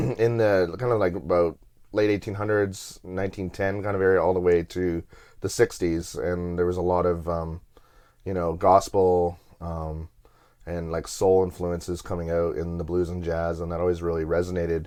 the kind of about late 1800s, 1910 kind of area, all the way to the 60s. And there was a lot of, gospel and soul influences coming out in the blues and jazz, and that always really resonated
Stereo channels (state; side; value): identical; both; correlation 1.00